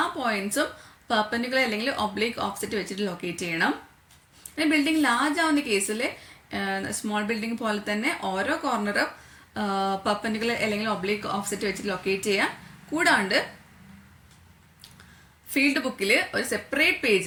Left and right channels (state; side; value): identical; both; correlation 1.00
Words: പോയിന്റ്സും പെർപെൻഡിക്കുലർ അല്ലെങ്കിൽ ഒബ്ലിക് ഓഫ്സെറ്റ് വെച്ചിട്ട് ലൊക്കേറ്റ് ചെയ്യണം. പിന്നെ ബിൽഡിംഗ് ലാർജ് ആവുന്ന കേസിൽ സ്മോൾ ബിൽഡിംഗ് പോലെ തന്നെ ഓരോ കോർണറും പെർപെൻഡിക്കുലർ അല്ലെങ്കിൽ ഒബ്ലിക് ഓഫ്സെറ്റ് വെച്ചിട്ട് ലൊക്കേറ്റ് ചെയ്യാം. കൂടാണ്ട് ഫീൽഡ് ബുക്കിൽ ഒരു സെപ്പറേറ്റ്